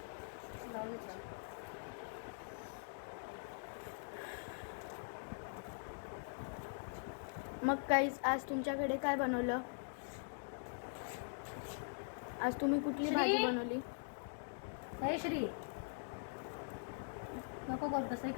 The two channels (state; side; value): silent; right; digital silence